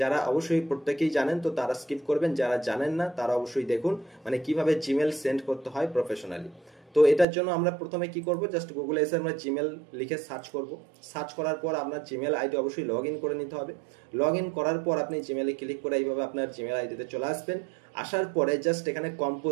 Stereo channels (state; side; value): drops out; left; at 7.2 s